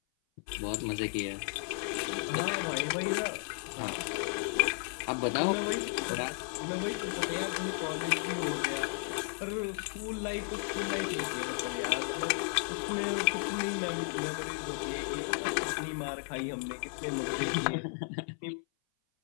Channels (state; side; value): silent; right; 55 dB below the other